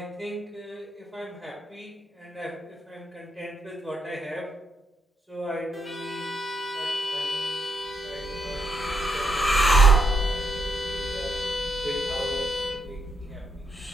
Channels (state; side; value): normal; both; correlation 0.78